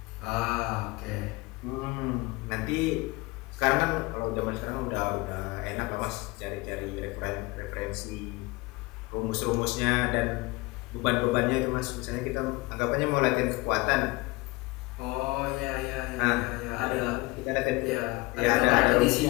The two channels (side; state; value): right; quieter; 23.3 dB